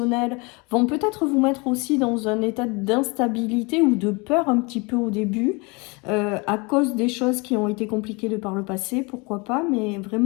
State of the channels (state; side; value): quieter; right; 28.2 dB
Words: vont peut-être vous mettre aussi dans un état d'instabilité ou de peur un petit peu au début, à cause des choses qui ont été compliquées de par le passé, pourquoi pas, mais